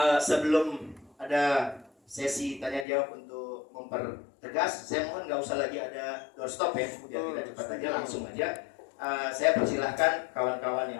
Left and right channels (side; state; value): right; drops out; at 2.9 s